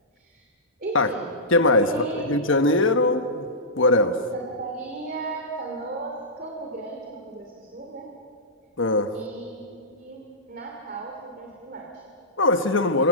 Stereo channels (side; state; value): both; normal; correlation -0.16